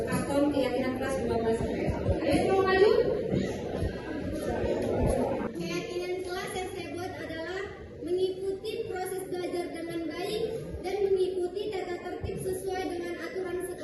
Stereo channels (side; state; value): both; identical; correlation 1.00